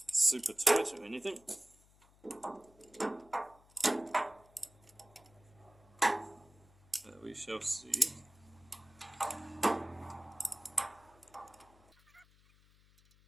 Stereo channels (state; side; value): noise; left; hum, 28 dB below the sound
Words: super tight or anything. But we shall see.